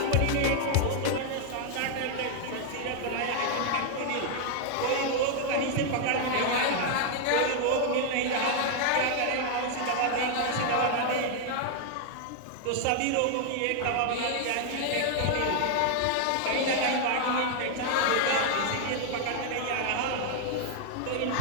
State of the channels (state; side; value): different; both; correlation 0.00